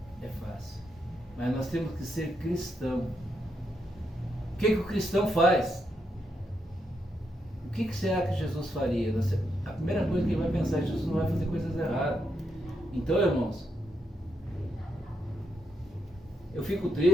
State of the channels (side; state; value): both; normal; correlation 0.81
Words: é fácil, mas nós temos que ser cristão. O que o cristão faz? O que será que Jesus faria? A primeira coisa que ele vai pensar é que Jesus não vai fazer coisas erradas. Então, irmãos, eu fico